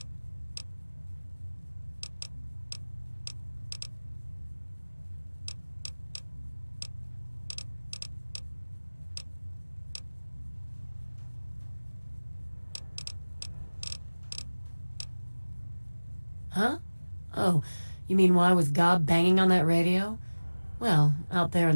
Huh? Oh, you mean why was Gob banging on that radio? Well, out there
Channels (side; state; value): both; inverted; correlation -1.00